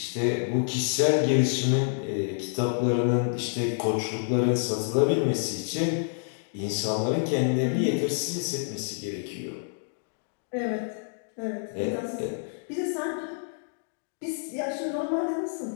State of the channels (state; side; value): silent; right; digital silence